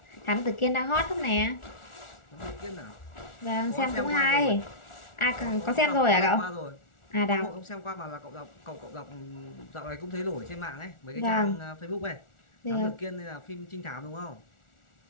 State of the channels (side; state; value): right; late; 1.4 ms